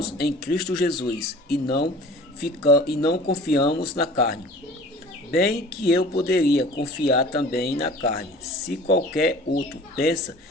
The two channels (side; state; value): both; normal; correlation 0.44